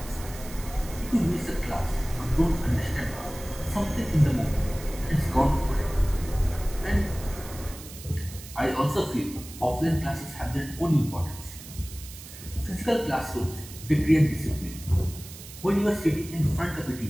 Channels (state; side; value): noise; right; hiss, 15 dB below the sound